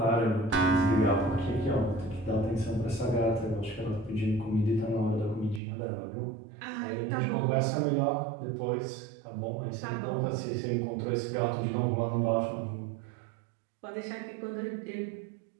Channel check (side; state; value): left; drops out; at 5.6 s